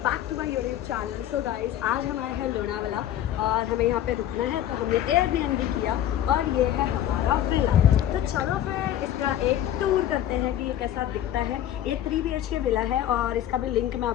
back to my YouTube channel. So guys, आज हम आए हैं लोनावाला और हमें यहाँ पे रुकना है, तो हमने एयरबीएनबी किया और ये है हमारा विला। तो चलो फिर इसका एक टूर करते हैं कि ये कैसा दिखता है। ये 3 BHK विला है और इसका भी लिंक मैं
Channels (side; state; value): right; quieter; 11.5 dB